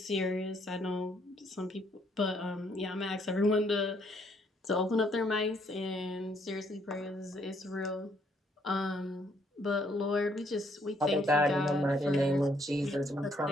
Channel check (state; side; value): normal; both; correlation 0.69